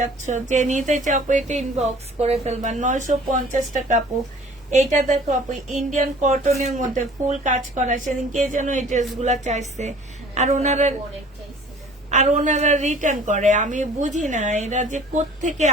যে নিতে চাও আপু এটা ইনবক্স করে ফেলবা। 950 টাকা আপু। এইটা দেখো আপু ইন্ডিয়ান কটনের মধ্যে ফুল কাজ করা, সেদিন কে যেন এই ড্রেস গুলা চাইছে, আর ওনারা রিটার্ন করে। আমি বুঝি না এরা যে কোত্থেকে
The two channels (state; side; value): normal; both; correlation 0.50